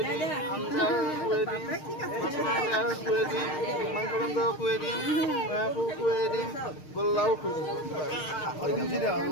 দিম আঞ্জা কৰি দিম কৰি দিম মাংস আঞ্জা কৰি দিম কৰি দিম গোল্লাও কৰি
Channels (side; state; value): right; late; 6.5 ms